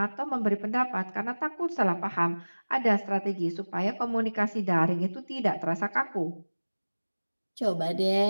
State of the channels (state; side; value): inverted; both; correlation -1.00